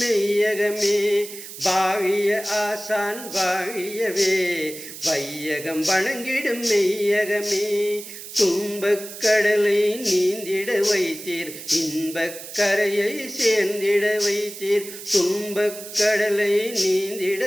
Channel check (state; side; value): noise; right; hiss, 12 dB below the sound